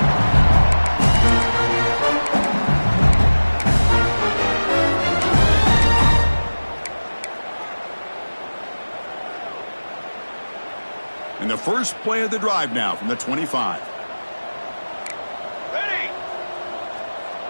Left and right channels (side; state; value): both; inverted; correlation -1.00